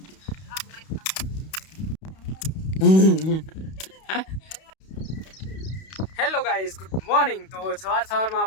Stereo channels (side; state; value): right; late; 31 ms